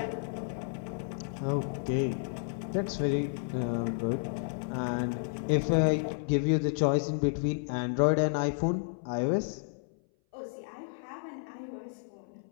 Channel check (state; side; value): silent; right; 57 dB below the other